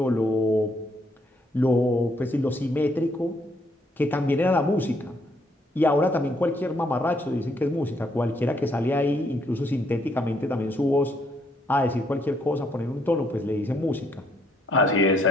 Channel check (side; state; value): both; normal; correlation 0.71